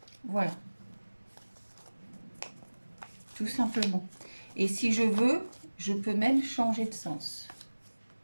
Voilà. Tout simplement. Et si je veux, je peux même changer de sens.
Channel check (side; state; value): both; inverted; correlation -1.00